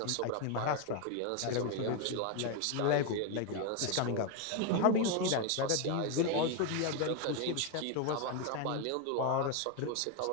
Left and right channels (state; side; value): different; both; correlation 0.01